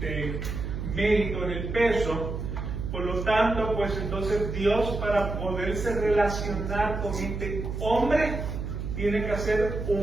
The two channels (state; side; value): noise; right; hum, 5 dB below the sound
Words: mérito en el peso. Por lo tanto, pues entonces Dios, para poderse relacionar con este hombre, tiene que hacer